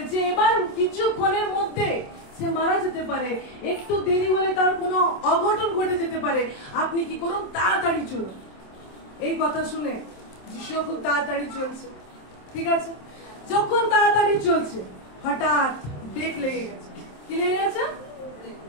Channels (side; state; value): right; late; 27 ms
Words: এবার কিছুক্ষণের মধ্যে সে মারা যেতে পারে, একটু দেরি হলে তার কোনো অঘটন ঘটে যেতে পারে, আপনি কি করুন, তাড়াতাড়ি চলুন। এই কথা শুনে যিশু খুব তাড়াতাড়ি চলছে। ঠিক আছে, যখন তাড়াতাড়ি চলছে, হঠাৎ ব্রেক লেগে গেছে। কি লেগে গেছে?